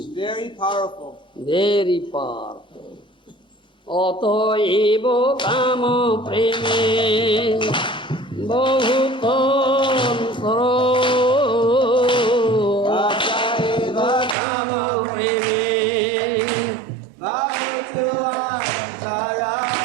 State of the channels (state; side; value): drops out; left; at 14.4 s